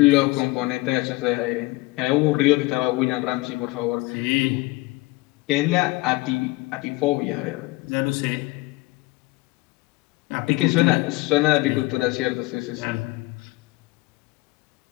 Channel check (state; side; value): quieter; right; 22.1 dB